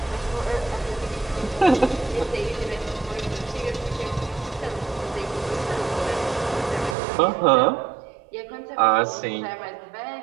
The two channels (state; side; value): drops out; left; at 7.0 s